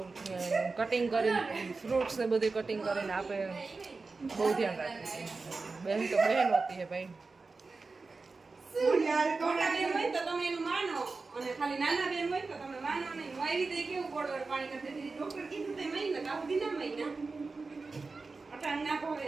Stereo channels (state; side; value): quieter; left; 4.0 dB